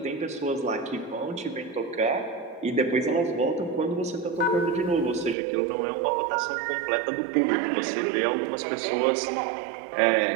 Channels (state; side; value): drops out; left; at 5.4 s